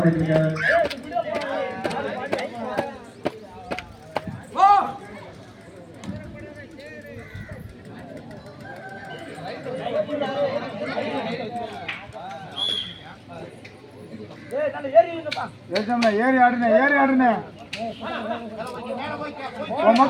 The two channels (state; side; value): identical; both; correlation 1.00